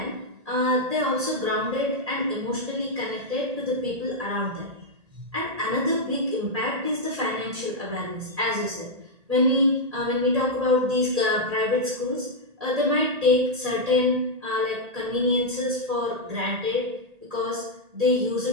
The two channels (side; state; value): left; late; 1.8 ms